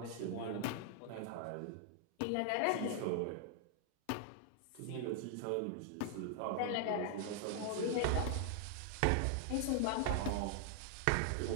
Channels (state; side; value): different; both; correlation 0.00